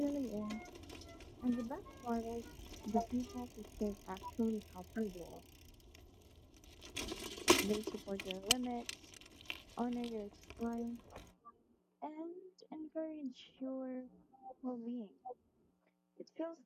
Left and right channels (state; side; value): identical; both; correlation 1.00